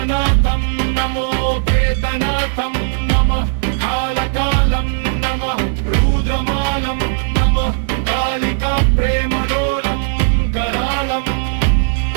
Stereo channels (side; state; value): left; silent; digital silence